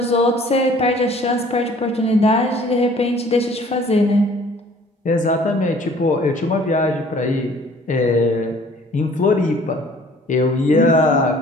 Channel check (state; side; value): normal; both; correlation 0.54